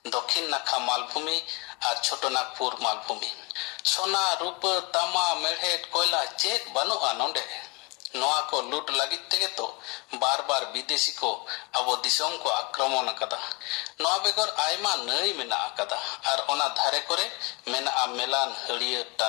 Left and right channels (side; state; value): right; quieter; 28.0 dB